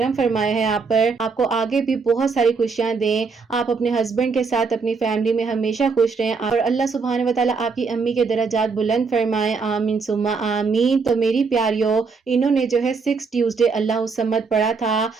فرمایا ہے آپ پر، آپ کو آگے بھی بہت ساری خوشیاں دیں، آپ اپنے ہسبینڈ کے ساتھ اپنی فیملی میں ہمیشہ خوش رہیں، اور اللہ سبحانہ و تعالیٰ آپ کی امی کے درجات بلند فرمائے، آمین ثم آمین۔ تو میری پیاریوں، انہوں نے جو ہے 6 ٹیوزڈے اللہ الصمد پڑھا تھا،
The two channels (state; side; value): quieter; left; 4.8 dB